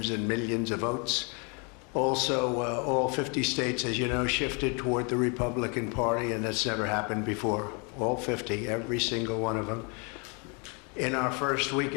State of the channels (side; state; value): right; quieter; 33.7 dB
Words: and millions of votes. Also, all 50 states, as you know, shifted toward the Republican Party, and that's never happened before. All 50, every single one of them. In our first week